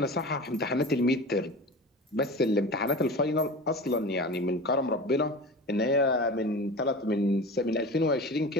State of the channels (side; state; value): both; normal; correlation 0.33